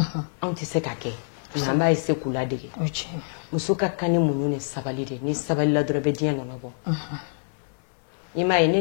anw tɛ se ka kɛ nka an b'a essayer k'u ladege muso ka kan ni muɲu ni sabali de ni sabali la dɔrɔn bɛ diɲɛ nɔnɔ bɔ i m'a ye ne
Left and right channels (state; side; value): silent; right; 61 dB below the other